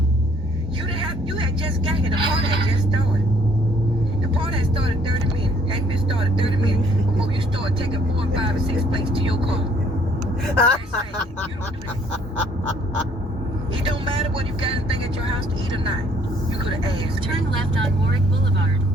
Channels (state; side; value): normal; both; correlation 0.62